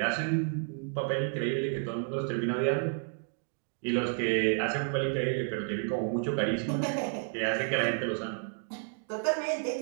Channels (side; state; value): left; silent; 57 dB below the other